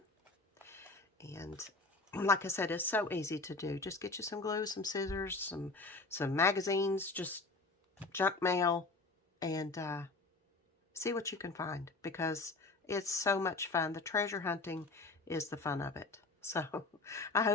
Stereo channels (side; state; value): right; quieter; 3.6 dB